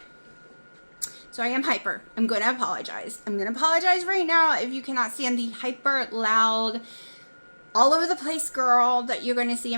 I am hyper. I'm going to apologize. I'm going to apologize right now if you cannot stand the hyper loud, all over the place girl that you're going to see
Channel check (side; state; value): both; inverted; correlation -1.00